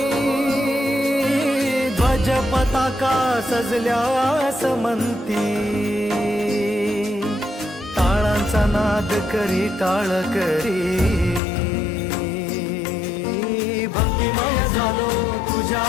ध्वज पताका सजल्या समंती टाळांचा नाद करी टाळ करी भक्तिमय झालो तुझ्या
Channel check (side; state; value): right; drops out; at 11.4 s